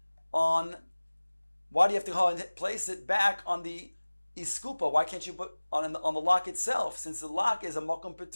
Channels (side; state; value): both; inverted; correlation -1.00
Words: on? Why do you have to go and place it back on the iskupa? Why can't you put on the lock itself? Since the lock is a mokom